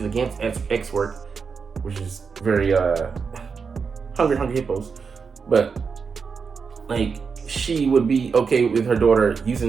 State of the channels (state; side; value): quieter; left; 5.5 dB